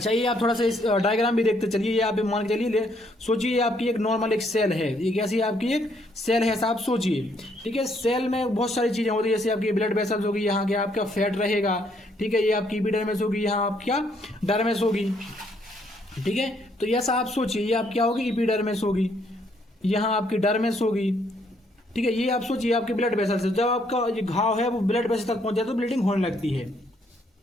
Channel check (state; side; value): normal; both; correlation 0.70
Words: ये आप थोड़ा सा इस डायग्राम भी देखते चलिए, ये आप मान के चलिए, सोचिए ये आपकी एक नॉर्मल एक सेल है, ये कैसी आपकी एक सेल है ऐसा आप सोचिए, ठीक है। सेल में बहुत सारी चीजें होती है, जैसे आपकी ब्लड वेसल्स होगी, यहाँ क्या आपका फैट रहेगा, ठीक है, ये आपकी एपिडर्मिस होगी, यहाँ आप क्या डर्मिस होगी, ठीक है। तो ऐसा आप सोचिए ये आप क्या होगी एपिडर्मिस होगी, यहाँ आपकी डर्मिस होगी, ठीक है। ये आप सोचिए आपके ब्लड वेसल से जब आपका ये घाव है वो ब्लड वेसल तक पहुंच जाए तो ब्लीडिंग होने लगती है,